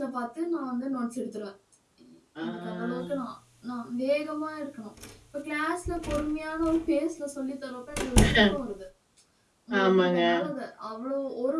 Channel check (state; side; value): identical; both; correlation 1.00